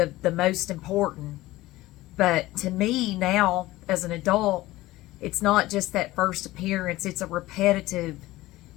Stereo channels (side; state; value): right; quieter; 17.7 dB